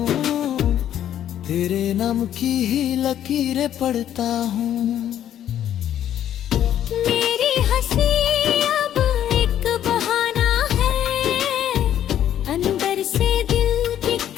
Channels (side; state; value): right; quieter; 10.8 dB